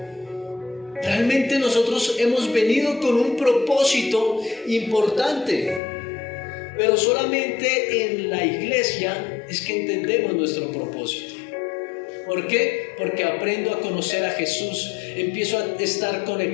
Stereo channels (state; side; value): drops out; right; at 5.8 s